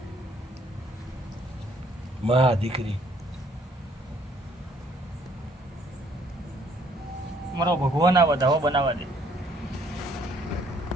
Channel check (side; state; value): both; normal; correlation 0.63